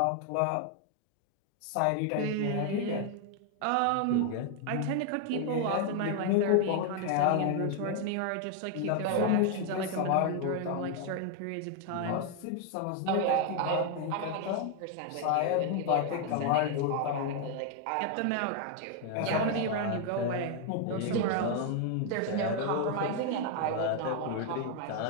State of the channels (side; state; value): both; different; correlation 0.01